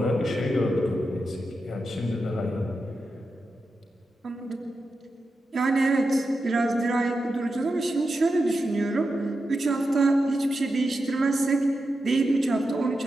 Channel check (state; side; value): normal; both; correlation 0.89